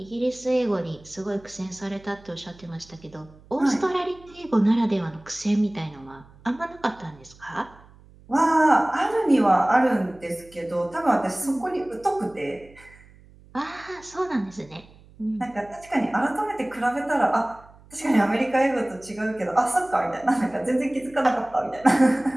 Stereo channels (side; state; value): right; noise; hum, 25 dB below the sound